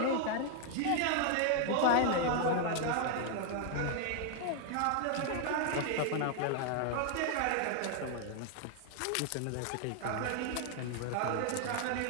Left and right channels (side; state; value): both; different; correlation 0.00